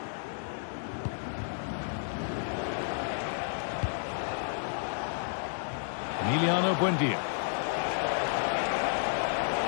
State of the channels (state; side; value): silent; right; digital silence